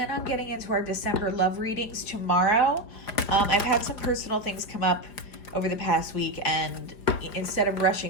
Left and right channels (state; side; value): late; right; 5.0 ms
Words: on getting into our December love readings tomorrow. I've had some personal things come up over the past week, and instead of